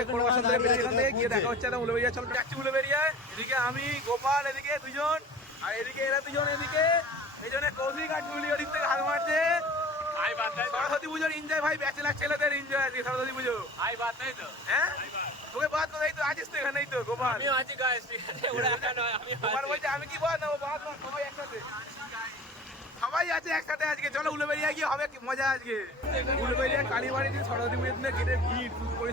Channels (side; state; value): both; normal; correlation 0.41